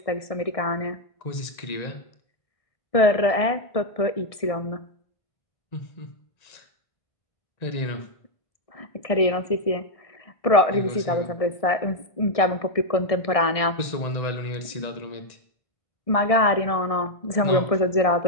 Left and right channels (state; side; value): late; right; 1.7 ms